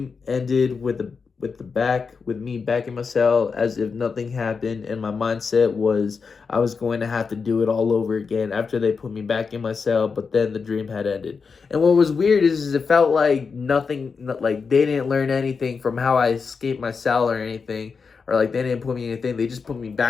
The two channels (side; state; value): right; quieter; 5.3 dB